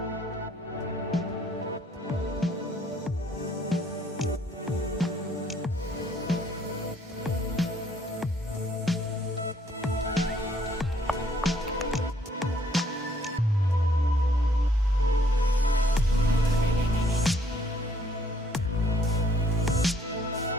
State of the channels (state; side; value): normal; both; correlation 0.65